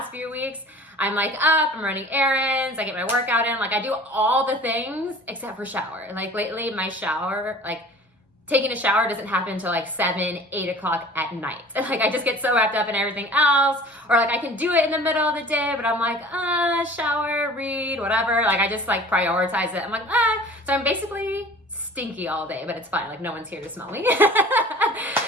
few weeks. I'm up, I'm running errands, I get my workout in, I do all the things except for shower. Lately my shower, taking a shower doesn't happen until 7, 8 o'clock at night. I just get so wrapped up in everything else, or I can do it in the middle of the day, but I'm shower, read, whatever. I just prioritize it. I'm so I'm basically stinky all day, but it's fine. No one's here to smell me.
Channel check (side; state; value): both; normal; correlation 0.45